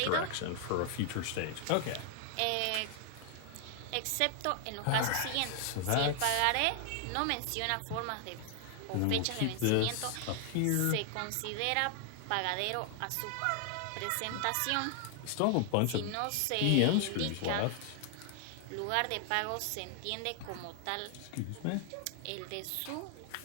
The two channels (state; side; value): different; both; correlation 0.00